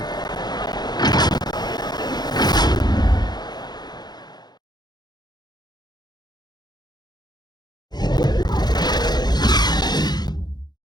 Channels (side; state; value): right; late; 0.20 ms